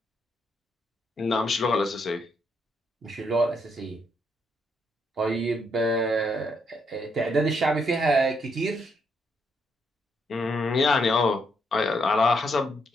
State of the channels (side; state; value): both; normal; correlation 0.76